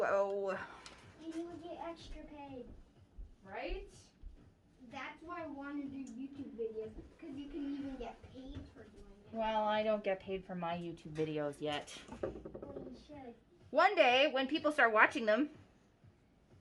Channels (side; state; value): both; identical; correlation 1.00